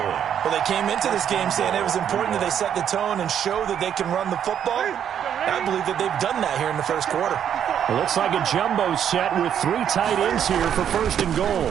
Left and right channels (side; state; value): left; quieter; 9.1 dB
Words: Well, they came into this game saying it was important that they set the tone and show that they can run the football. I believe that they've done that here in the first quarter. It looks like a jumbo set with 3 tight ends here for first and